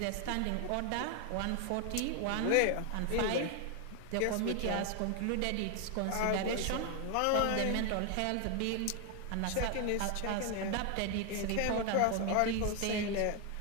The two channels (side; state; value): both; different; correlation 0.01